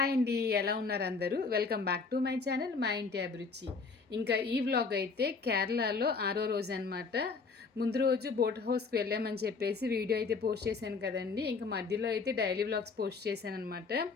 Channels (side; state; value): right; quieter; 4.6 dB